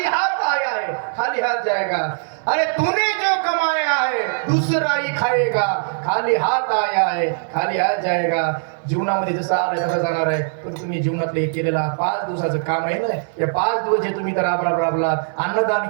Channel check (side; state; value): left; silent; digital silence